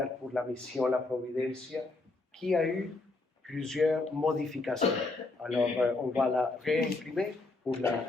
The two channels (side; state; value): right; quieter; 3.3 dB